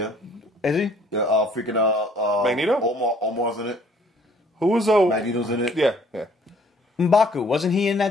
Is he? Yeah, freaking Magneto? Omar's in it. Who was Magneto's in it. Yeah. M'Baku, wasn't he in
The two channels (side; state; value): both; normal; correlation 0.58